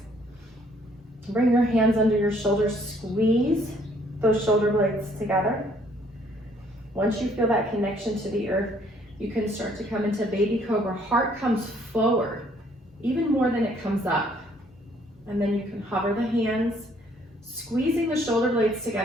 Bring your hands under your shoulders, squeeze those shoulder blades together. Once you feel that connection to the earth, you can start to come into baby cobra. Heart comes forward, even more than it comes up. And then you can hover the hands, squeezing the shoulder blades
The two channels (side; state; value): both; normal; correlation 0.63